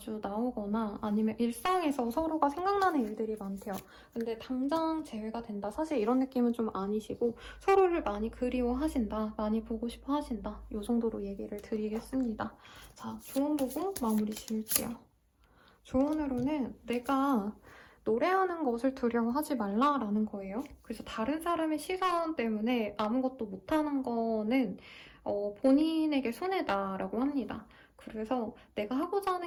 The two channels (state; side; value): identical; both; correlation 1.00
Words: 나오거나 아니면 일상에서 서로가 생각나는 일들이 많대요. 근데 당장 재회가 된다. 사실 이런 느낌은 좀 아니시고 서로를 많이 그리워하신다. 많이 보고 싶어 하신다. 이 정도로 얘기를 드리겠습니다. 자, 조언 보고 마무리 지을게요. 조언으로는 내가 노래하는 것을 두려워하지 말라라는 거예요. 그래서 다른 사람의 시선 때문에 아무것도 못하는 거는 본인에게 손해다라고 합니다. 그래서 내가 하고자